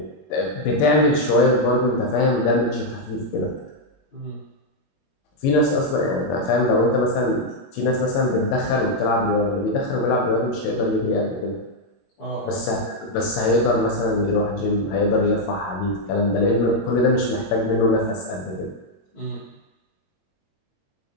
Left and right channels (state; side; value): late; right; 22 ms